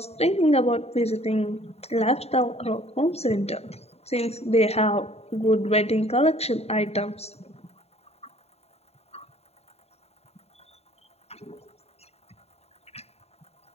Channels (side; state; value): right; late; 0.30 ms